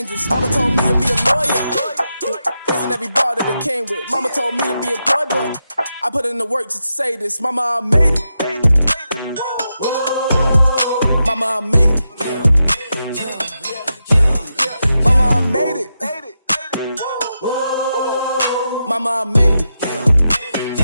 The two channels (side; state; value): both; inverted; correlation -0.87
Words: Mama told me to be a lawyer. Raising every bar that it came with. Mama told me to be employed, but I put in the work just to say this. Mama, I made it. Mama, I made it. Mama, I made it. Mama, I made it.